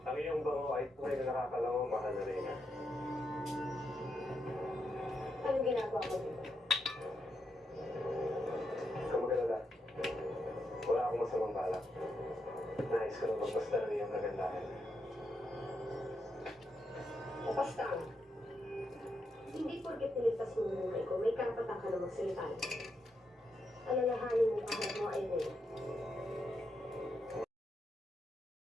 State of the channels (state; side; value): normal; both; correlation 0.82